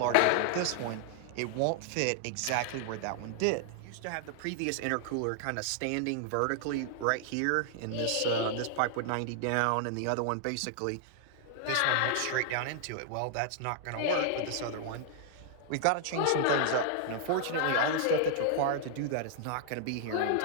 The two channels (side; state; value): both; different; correlation -0.01